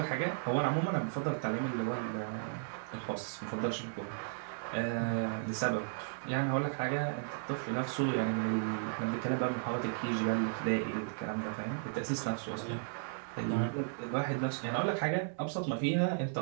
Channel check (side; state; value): left; silent; digital silence